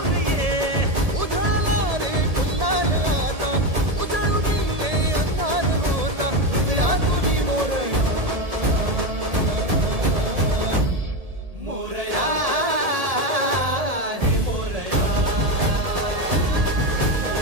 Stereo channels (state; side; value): late; left; 1.7 ms